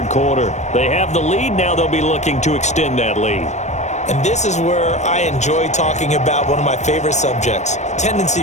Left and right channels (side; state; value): right; late; 0.34 ms